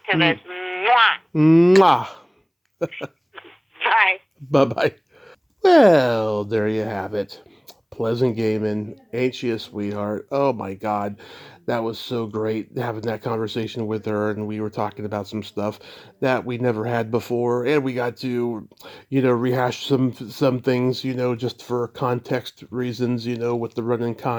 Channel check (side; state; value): both; identical; correlation 1.00